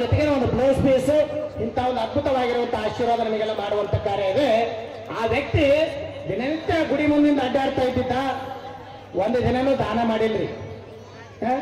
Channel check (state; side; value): identical; both; correlation 1.00